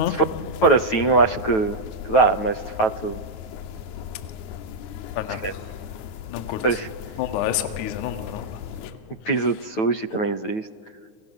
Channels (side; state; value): right; late; 9.2 ms